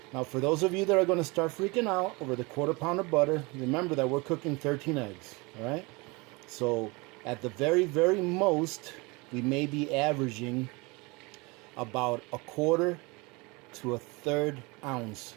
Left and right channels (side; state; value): left; quieter; 26.4 dB